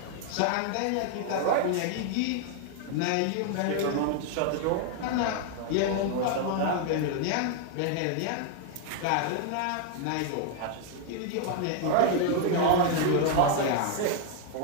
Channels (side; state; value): both; different; correlation 0.00